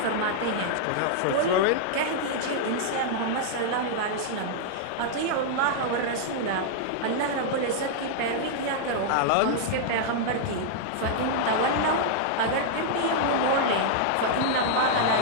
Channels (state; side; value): different; both; correlation -0.01